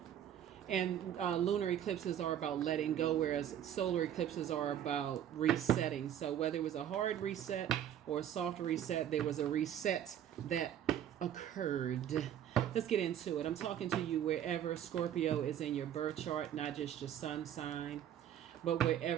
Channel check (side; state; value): left; quieter; 10.3 dB